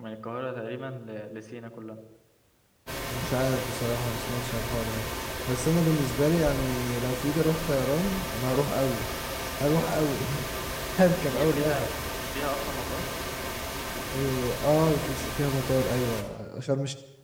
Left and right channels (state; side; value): identical; both; correlation 1.00